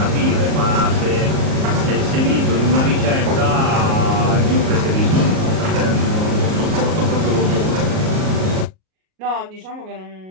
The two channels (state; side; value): late; left; 38 ms